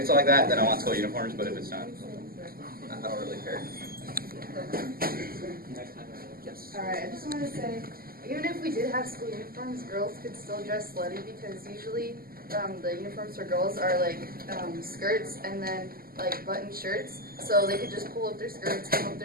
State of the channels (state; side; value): late; left; 0.42 ms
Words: like that, then I want school uniforms. But if it's not, I don't really care. Alright, I just want to say, even if we did have school uniforms, girls could still dress slutty, because usually the uniforms for girls are like skirts and then like button shirts, so they could just pull up their skirts, come up